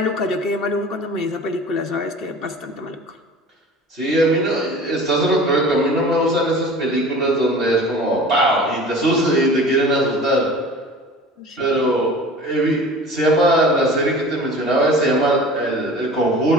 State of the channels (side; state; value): both; normal; correlation 0.41